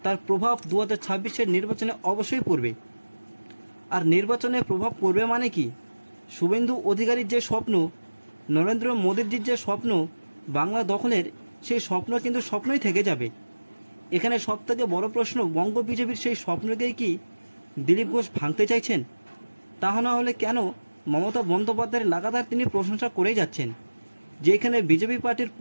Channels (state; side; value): inverted; both; correlation -1.00